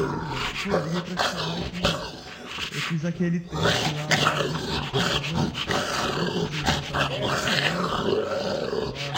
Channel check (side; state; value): both; identical; correlation 1.00